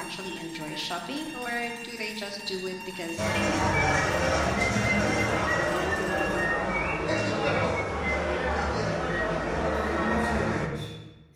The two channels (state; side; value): identical; both; correlation 1.00